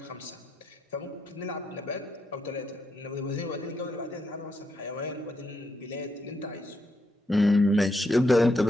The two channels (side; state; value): both; normal; correlation 0.79